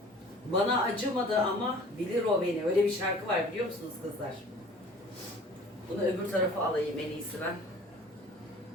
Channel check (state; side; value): normal; both; correlation 0.47